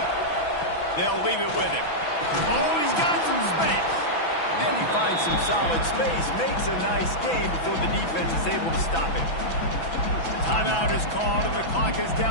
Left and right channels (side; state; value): right; late; 6.0 ms